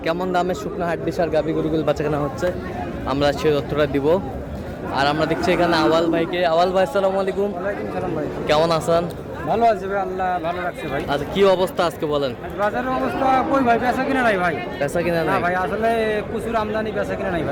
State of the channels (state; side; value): identical; both; correlation 1.00